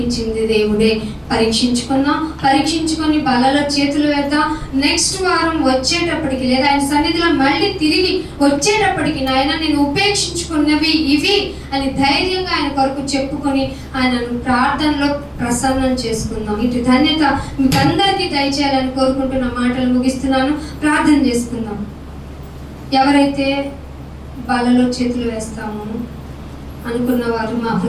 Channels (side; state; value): both; identical; correlation 1.00